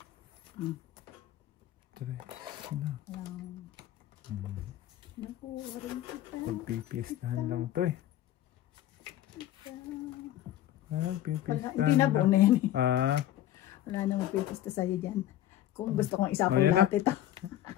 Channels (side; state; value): right; quieter; 12.9 dB